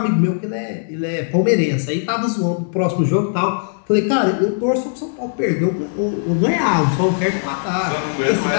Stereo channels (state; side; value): silent; right; 67 dB below the other